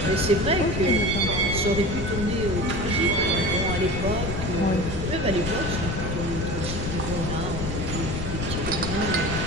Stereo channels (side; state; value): left; noise; rumble, 4 dB below the sound